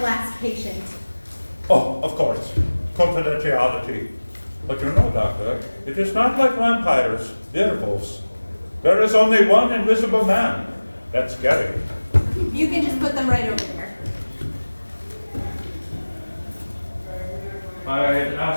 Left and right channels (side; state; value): both; inverted; correlation -1.00